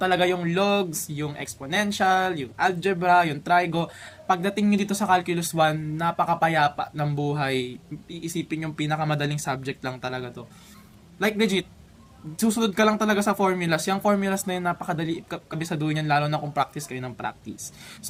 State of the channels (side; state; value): both; identical; correlation 1.00